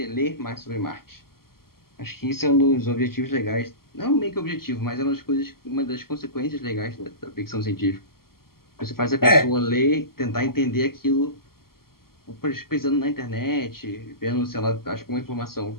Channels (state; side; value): late; right; 0.93 ms